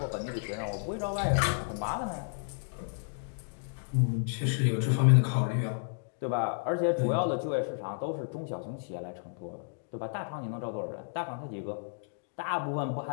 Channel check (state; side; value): silent; right; digital silence